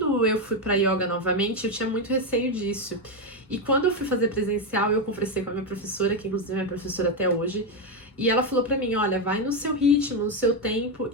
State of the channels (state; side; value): normal; both; correlation 0.07